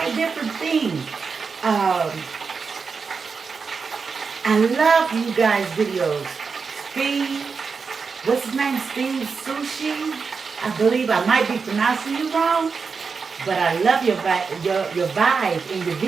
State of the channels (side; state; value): left; quieter; 5.2 dB